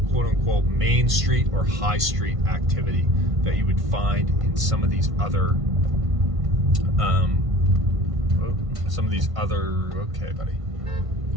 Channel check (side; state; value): left; late; 1.5 ms